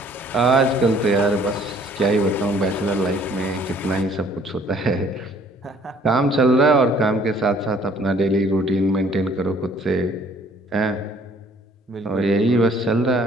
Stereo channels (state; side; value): normal; both; correlation 0.58